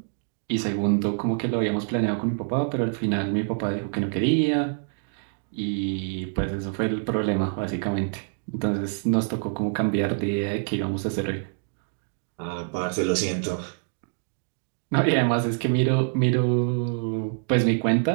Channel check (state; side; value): silent; left; digital silence